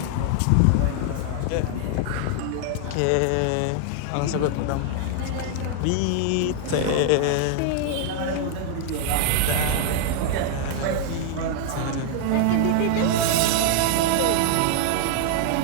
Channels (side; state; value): both; different; correlation 0.00